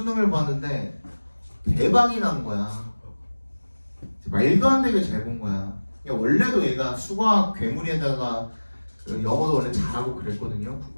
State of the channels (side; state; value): both; inverted; correlation -1.00